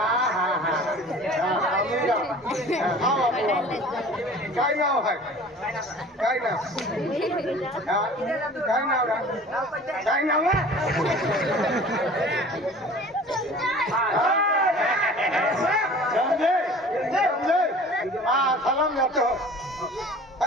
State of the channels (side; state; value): both; normal; correlation 0.44